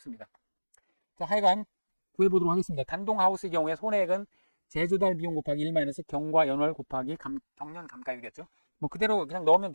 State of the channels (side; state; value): both; inverted; correlation -1.00